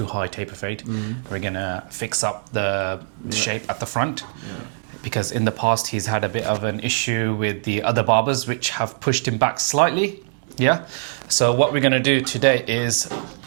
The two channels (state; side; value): silent; left; digital silence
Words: high taper fade. We're going to fix up the shape at the front. Because in the past he's had a bit of an issue with the other barbers which have pushed him back slightly. So what we're going to do today is